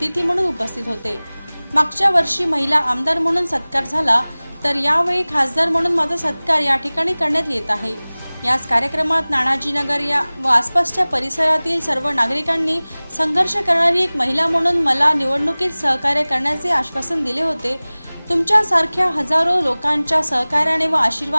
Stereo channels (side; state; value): both; inverted; correlation -0.99